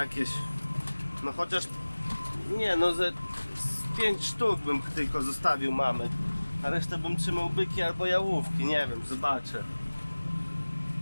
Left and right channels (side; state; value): both; inverted; correlation -1.00